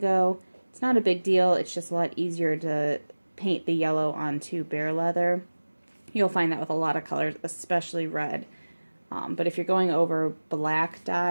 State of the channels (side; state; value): both; inverted; correlation -1.00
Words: it's not a big deal. It's just a lot easier to paint the yellow onto bare leather. You'll find that with a lot of colors, especially red. But if you're going over black